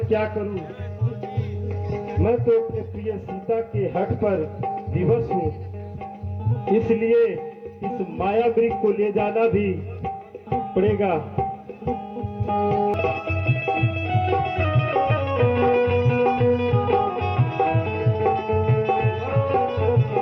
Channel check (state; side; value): identical; both; correlation 1.00